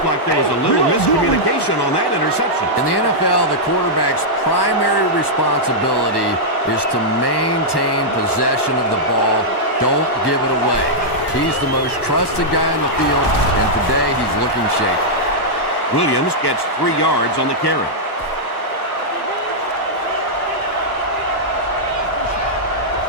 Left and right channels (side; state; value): right; late; 1.2 ms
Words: like there was a little miscommunication on that interception. In the NFL, the quarterback's primary responsibility is to maintain possession of the ball. Don't give it away. He's the most trusted guy on the field, and today he's looking shaky. Williams gets 3 yards on the carry.